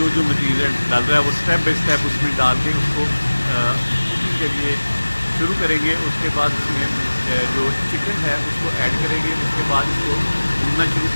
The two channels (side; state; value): both; inverted; correlation -1.00